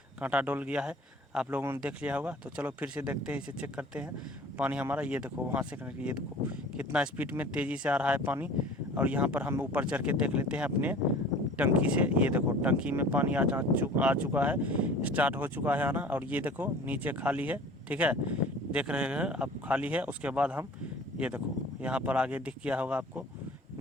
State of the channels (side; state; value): both; normal; correlation 0.44